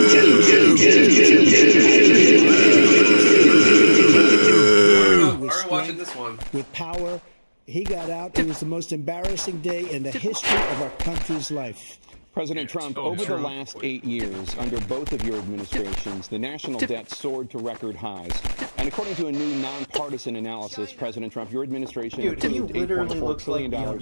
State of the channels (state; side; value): inverted; both; correlation -1.00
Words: watching this one. With power, he got out. It was the most embarrassing day in the history of our country's life. President Trump, over the last 8 years, under both of your administrations, the national debt soared to record highs. And according to a new nonpartisan analysis, President Trump, your administration approved $8.4 trillion